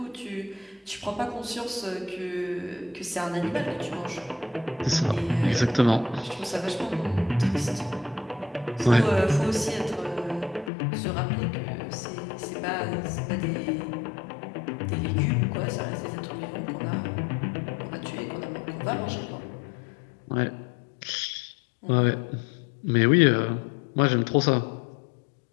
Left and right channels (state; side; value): drops out; right; at 10.7 s